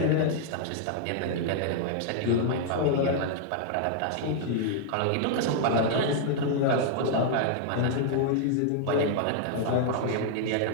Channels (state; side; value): different; both; correlation -0.01